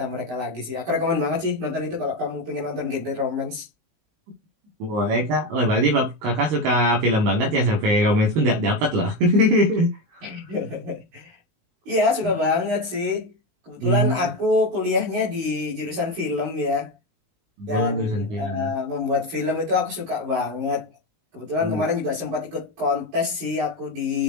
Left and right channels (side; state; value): left; late; 19 ms